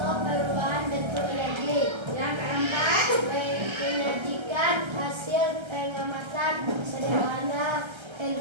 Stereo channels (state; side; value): late; left; 1.3 ms